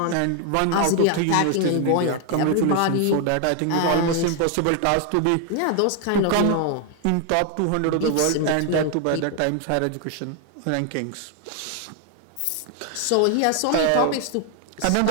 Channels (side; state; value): both; different; correlation 0.00